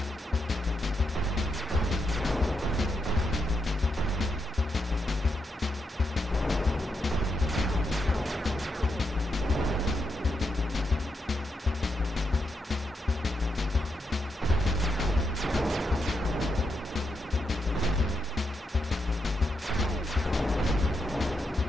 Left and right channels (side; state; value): both; normal; correlation 0.83